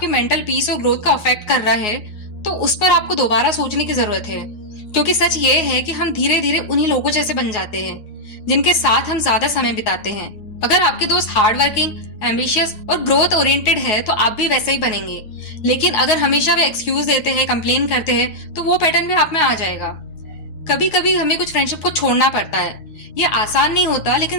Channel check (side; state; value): right; late; 9.1 ms